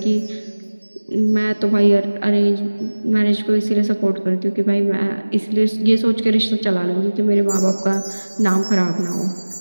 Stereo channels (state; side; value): inverted; both; correlation -1.00